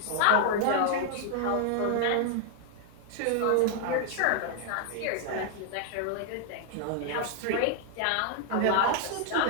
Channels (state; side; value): different; both; correlation 0.00